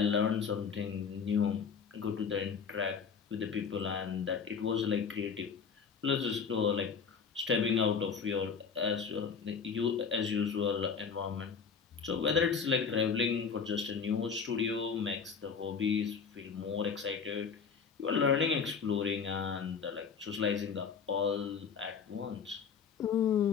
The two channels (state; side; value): quieter; right; 6.1 dB